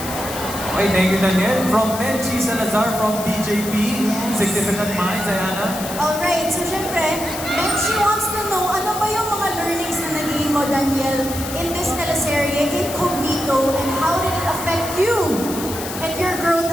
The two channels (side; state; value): left; noise; hiss, 9 dB below the sound